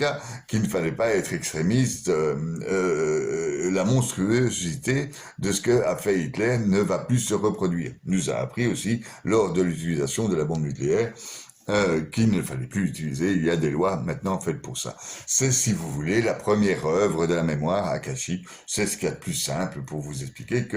qu'il ne fallait pas être extrémiste. La monstruosité de ce que a fait Hitler ne va plus se reproduire. Nous a appris aussi lors de l'utilisation de la bombe nucléaire qu'il ne fallait plus utiliser. Il y a des lois maintenant faites pour ça. C'est, si vous voulez, la première œuvre de la mémoire akashique. C'est ce qu'il y a de plus simple pour vous expliquer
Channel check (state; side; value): identical; both; correlation 1.00